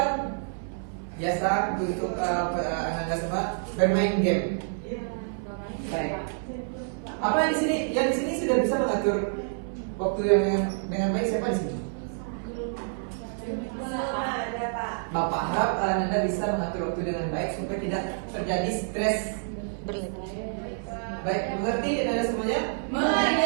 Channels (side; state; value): left; silent; 59 dB below the other